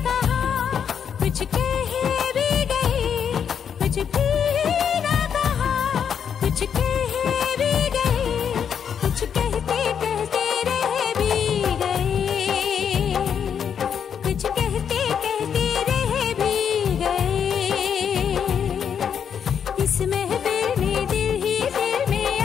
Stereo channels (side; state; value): right; quieter; 7.8 dB